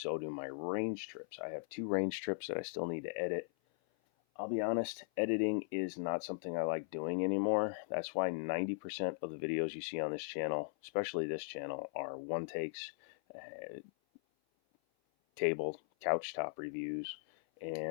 do my range trips. I have 2 range trips that I still need to edit. I'll be honest, editing is not something I like doing anymore. That's why 90% of the videos you see on this channel, especially this channel, are one takes, table, couch top reviews,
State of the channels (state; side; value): silent; right; 52 dB below the other